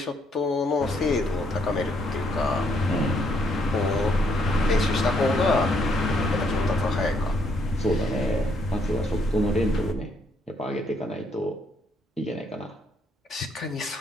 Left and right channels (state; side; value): normal; both; correlation 0.71